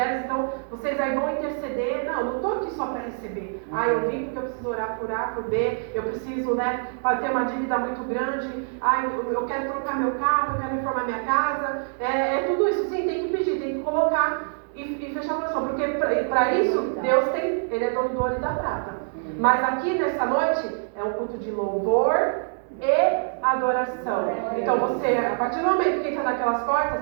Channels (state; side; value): silent; left; digital silence